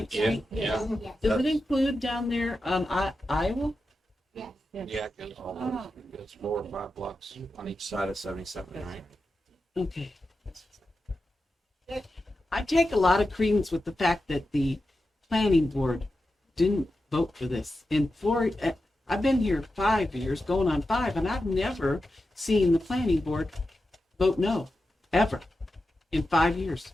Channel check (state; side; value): normal; both; correlation 0.91